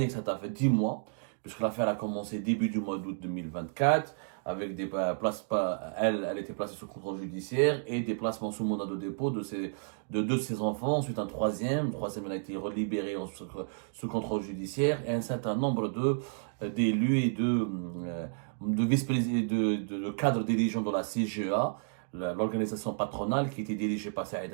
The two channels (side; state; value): left; silent; digital silence